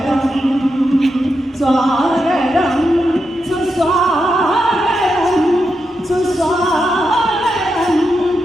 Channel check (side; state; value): both; normal; correlation 0.86